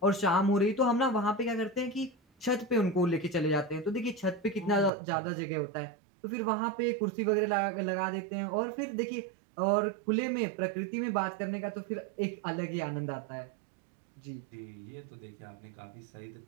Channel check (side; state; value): left; drops out; at 4.9 s